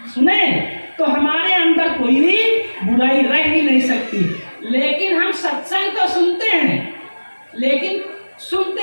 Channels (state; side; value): inverted; both; correlation -1.00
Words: तो हमारे अंदर कोई भी बुराई रह ही नहीं सकती। लेकिन हम सत्संग तो सुनते हैं, लेकिन सुनते